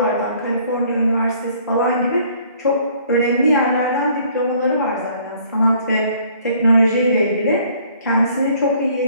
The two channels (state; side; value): inverted; both; correlation -0.59